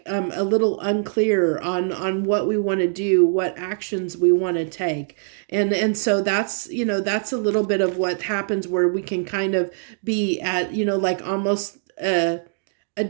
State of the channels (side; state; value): left; silent; digital silence